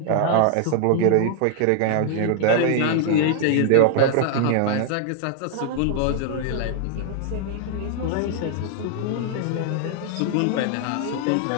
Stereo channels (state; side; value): different; both; correlation -0.01